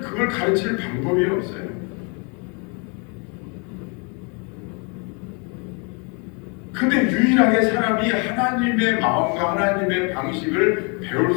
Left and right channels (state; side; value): quieter; right; 33.9 dB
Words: 가르칠 방법이 없어요. 근데 유일하게 사람이 하나님의 마음과 하나님의 방식을 배울